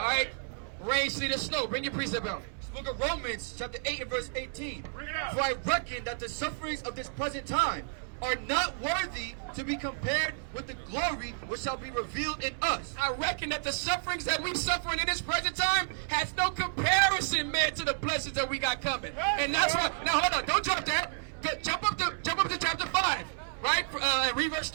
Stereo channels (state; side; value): silent; left; digital silence